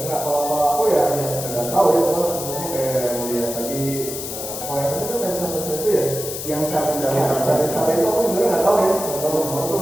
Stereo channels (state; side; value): noise; left; hiss, 7 dB below the sound